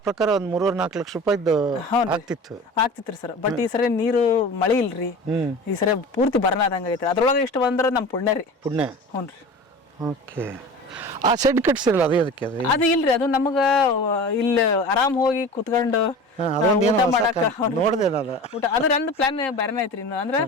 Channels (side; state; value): both; normal; correlation 0.36